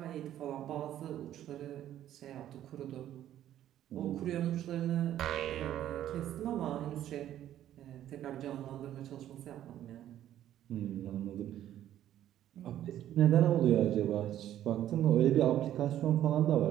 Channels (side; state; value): left; quieter; 11.9 dB